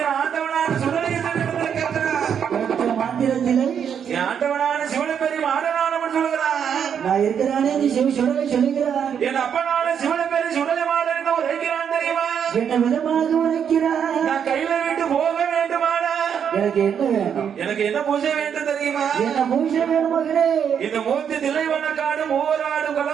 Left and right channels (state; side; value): quieter; left; 8.0 dB